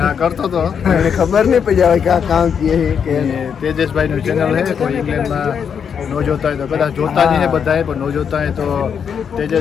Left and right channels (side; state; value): right; quieter; 7.3 dB